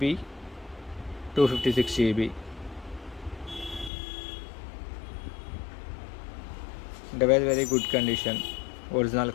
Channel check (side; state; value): right; drops out; at 3.9 s